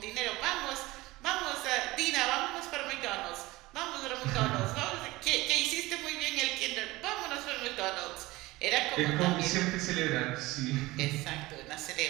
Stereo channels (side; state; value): left; quieter; 19.9 dB